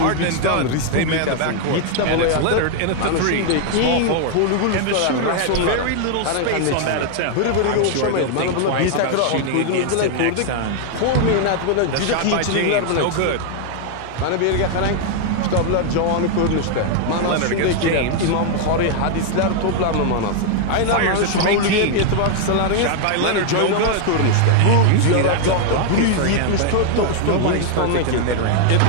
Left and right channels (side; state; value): both; different; correlation 0.00